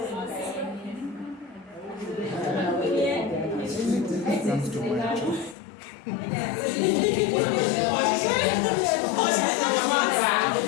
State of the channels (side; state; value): right; drops out; at 5.6 s